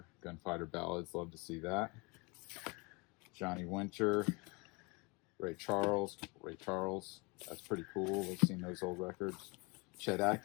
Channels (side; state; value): right; quieter; 28.7 dB